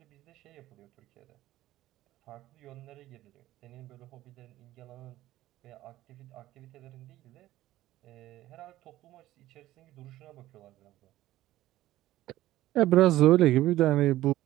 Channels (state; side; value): quieter; left; 15.3 dB